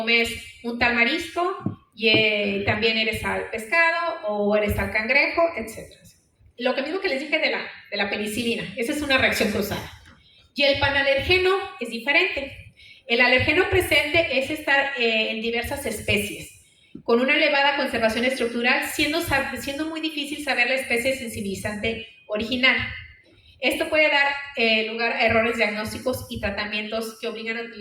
un tal marisco y también eres al pescado o eres al cangrejo, etc. Lo que mismo que les dije de la penicilina, esa es una reacción cruzada. Y el panalergeno es diferente. El alergeno presente es estar en diversas especies, con una elevada conservación estructural, siendo muy difícil saber la especie sensibilizante original. Esto puede dar lugar a errores diagnósticos y tratamientos que obligan a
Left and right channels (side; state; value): both; identical; correlation 1.00